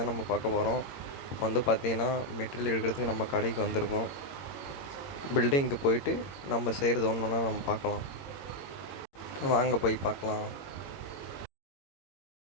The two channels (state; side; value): late; right; 21 ms